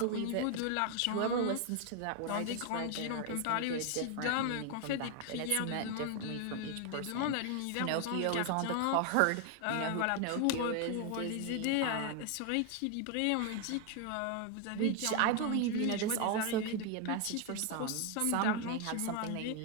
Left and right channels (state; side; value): different; both; correlation 0.01